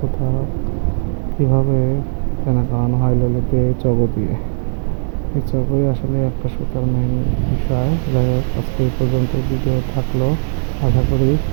কীভাবে কেনা করানো হয় ললিতে চগ দিয়ে। এই চগই আসলে একটা সুতার মেইন বিষয়। যাই হোক, আজকে এই পর্যন্ত ভিডিও থাকলো। আশা করি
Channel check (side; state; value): left; silent; 61 dB below the other